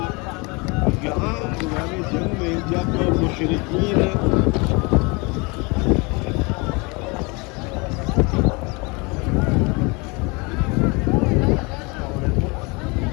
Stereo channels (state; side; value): quieter; right; 28.5 dB